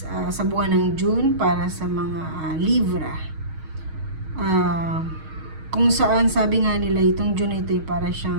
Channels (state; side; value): late; left; 6.4 ms